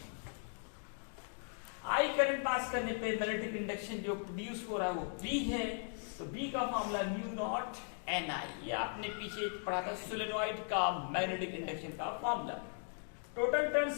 I करंट पास करने पे मैग्नेटिक इंडक्शन जो प्रोड्यूस हो रहा है वो B है, तो B का फॉर्मूला म्यू नॉट Ni, ये आपने पीछे पढ़ा था सोलेनॉइड का मैग्नेटिक इंडक्शन का फॉर्मूला। टोटल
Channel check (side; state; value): right; silent; 52 dB below the other